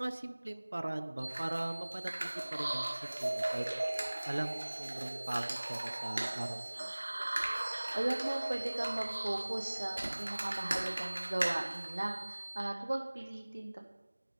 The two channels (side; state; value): both; inverted; correlation -1.00